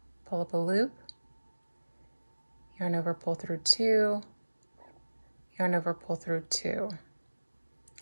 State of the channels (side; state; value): both; inverted; correlation -1.00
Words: pull up a loop, yarn over, pull through 2, yarn over, pull through 2.